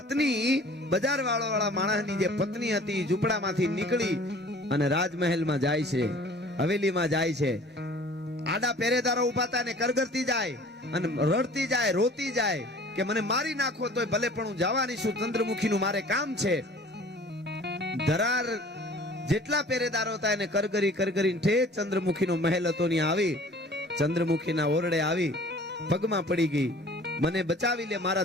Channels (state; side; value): normal; both; correlation 0.48